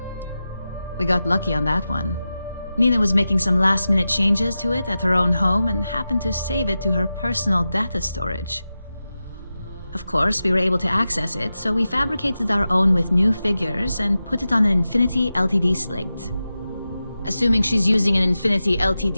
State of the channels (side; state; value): both; inverted; correlation -0.93